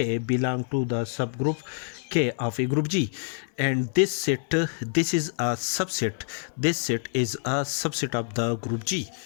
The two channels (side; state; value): right; silent; 60 dB below the other